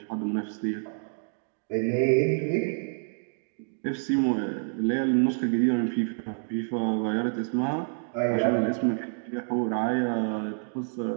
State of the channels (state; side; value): silent; left; 59 dB below the other